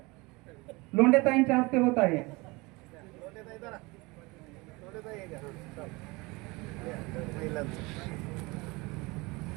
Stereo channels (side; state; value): left; quieter; 24.5 dB